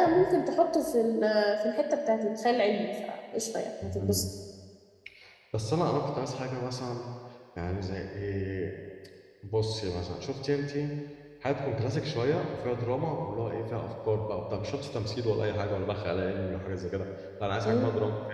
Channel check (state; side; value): identical; both; correlation 1.00